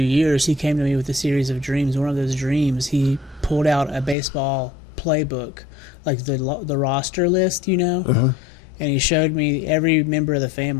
he came to me with a series of dreams. One of those dreams, he pulled out a baseball playbook, like the roster list, and he showed me every member of the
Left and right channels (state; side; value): drops out; right; at 4.2 s